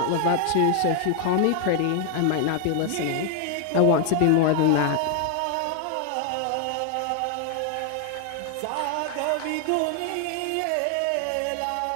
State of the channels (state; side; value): different; both; correlation 0.00